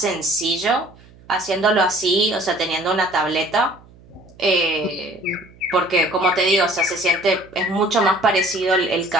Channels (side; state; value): right; noise; hum, 25 dB below the sound